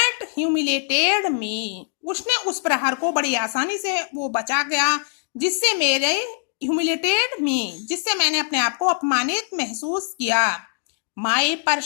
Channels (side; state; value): right; silent; digital silence